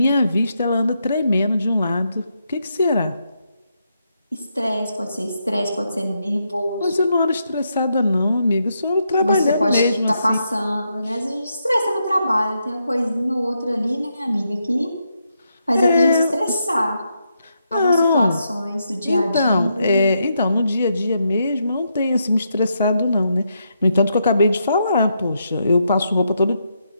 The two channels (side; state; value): both; inverted; correlation -0.81